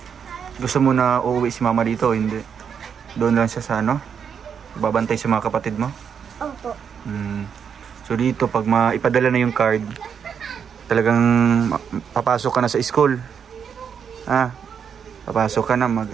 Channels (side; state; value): left; quieter; 7.3 dB